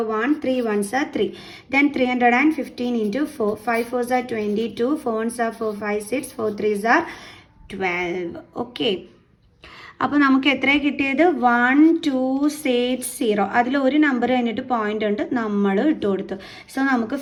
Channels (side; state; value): both; identical; correlation 1.00